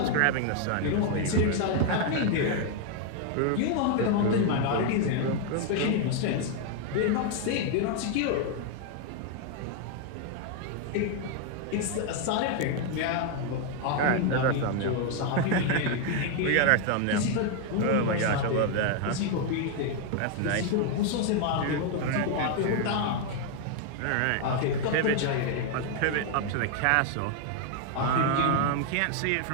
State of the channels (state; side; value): different; both; correlation 0.00